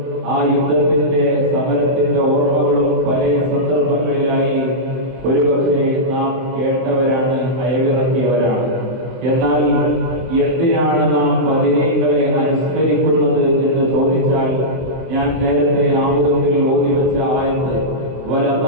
ആ യുദ്ധത്തിന്റെ സമരത്തിന്റെ ഓർമ്മകളും പല സന്ദർഭങ്ങളിലായി ഒരുപക്ഷെ നാം കേട്ടവരാണ്, അയവിറക്കിയവരാണ്. എന്നാൽ എന്തിനാണ് നാം ബദരീങ്ങളെ അനുസ്മരിക്കുന്നത് എന്ന് ചോദിച്ചാൽ, ഞാൻ നേരത്തെ ആമുഖത്തിൽ ഓതിവെച്ച ആയത്ത്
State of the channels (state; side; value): late; left; 23 ms